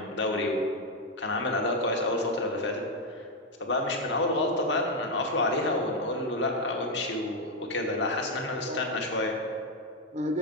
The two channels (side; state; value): both; normal; correlation 0.04